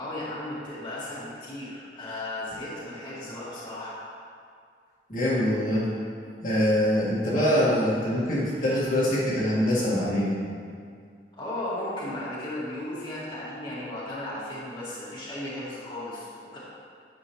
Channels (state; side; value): normal; both; correlation 0.58